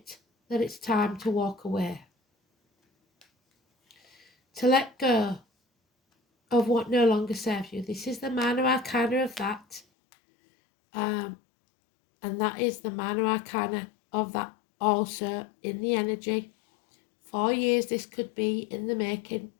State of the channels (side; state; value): right; drops out; at 9.9 s